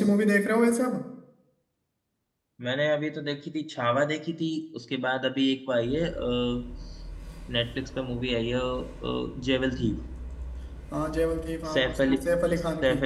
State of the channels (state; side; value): identical; both; correlation 1.00